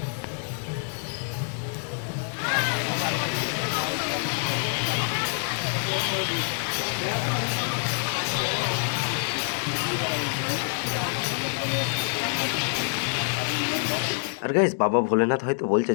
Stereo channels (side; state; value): right; silent; 61 dB below the other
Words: আর গাইস বাবা ভোলেনাথ হয়তো বলছে